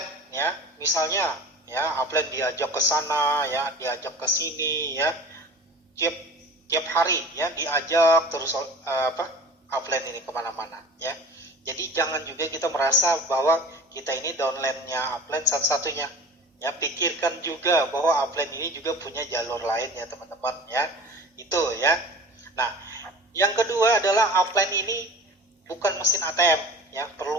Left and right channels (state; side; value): normal; both; correlation 0.40